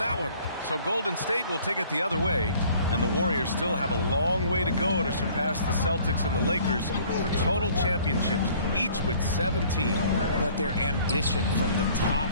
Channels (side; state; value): both; inverted; correlation -0.55